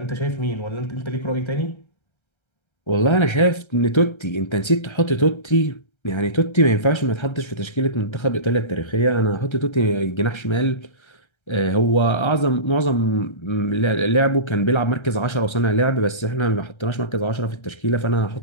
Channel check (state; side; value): late; right; 1.3 ms